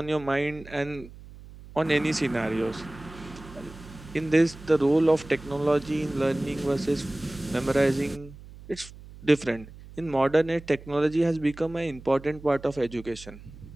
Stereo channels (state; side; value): noise; right; hum, 18 dB below the sound